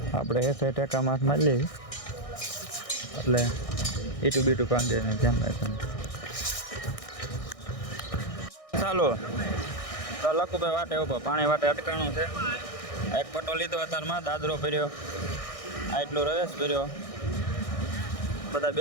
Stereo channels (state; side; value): late; right; 1.6 ms